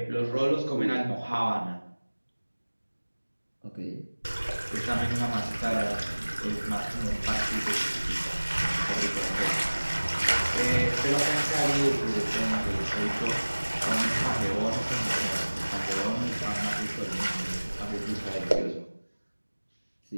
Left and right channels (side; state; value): both; inverted; correlation -1.00